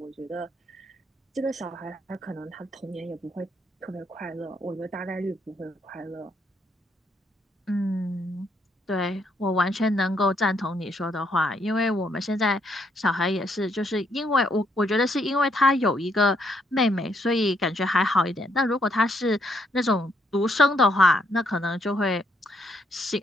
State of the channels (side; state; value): both; normal; correlation 0.73